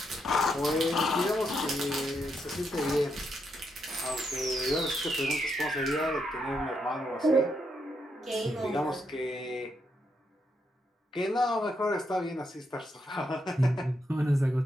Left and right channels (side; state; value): both; normal; correlation 0.80